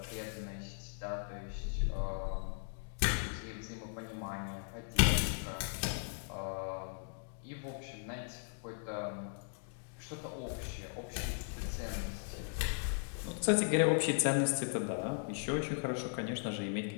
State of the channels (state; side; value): silent; right; 53 dB below the other